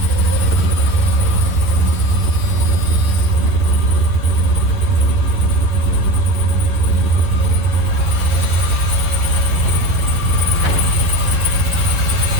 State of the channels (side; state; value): left; late; 11 ms